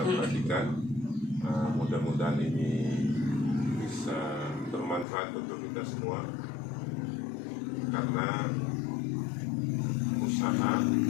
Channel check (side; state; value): right; drops out; at 5.1 s